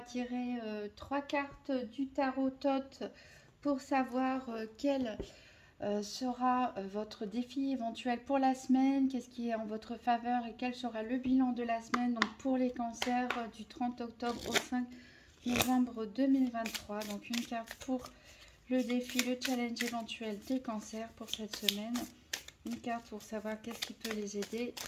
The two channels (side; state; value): both; identical; correlation 1.00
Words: tirer 3 cartes du tarot Thoth pour savoir quel sera votre défi éventuel pour la semaine, qu'est-ce qui est en votre faveur et quel sera le bilan de la semaine donc pour les cancers du 30 octobre au 5 novembre 2023. Donc une carte pour le défi, le challenge éventuel des cancers pour cette semaine. Une carte pour savoir qu'est-ce qui peut les aider.